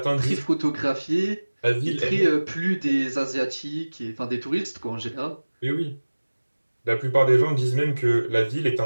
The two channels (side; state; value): both; inverted; correlation -1.00